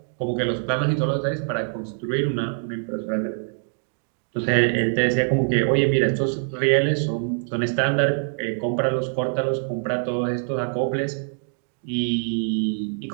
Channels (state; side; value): silent; left; digital silence